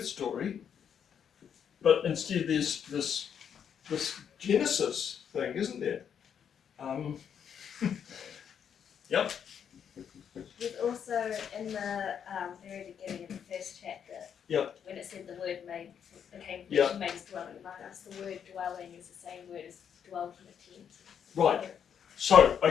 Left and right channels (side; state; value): right; quieter; 8.1 dB